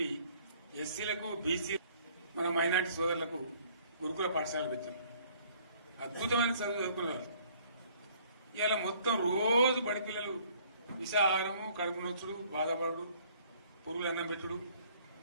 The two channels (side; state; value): both; inverted; correlation -0.59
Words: ఎస్సీలకు, బీసీ, మన మైనార్టీ సోదరులకు గురుకుల పాఠశాలలు పెట్టారు. అద్భుతమైన చదువు చదువుకునే వాళ్ళు ఇవాళ మొత్తం రోజు బడి పిల్లలు విషాహారము, కడుపు నొచ్చుడు, బాధపడు, పురుగులు అన్నం పెట్టుడు,